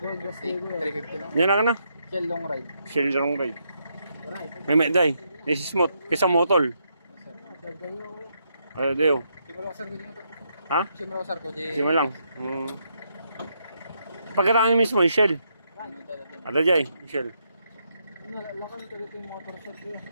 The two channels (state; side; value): inverted; both; correlation -0.78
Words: lang. Yan na. Chill long ride. Shell long ride. Right. May day. This is smooth. Kisa motol. Ano dayo? Simula ko, sir, ko dito. Ha? Simula ko, sir, ko dito. Sima lang. Pagkaraan mismo, yung shell. Ada jay, shell. Lakan talaga yung motor shop yun.